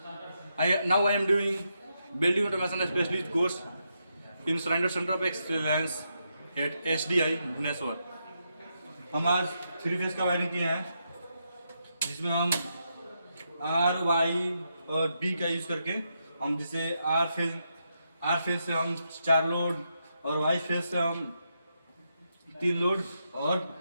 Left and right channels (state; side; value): inverted; both; correlation -0.82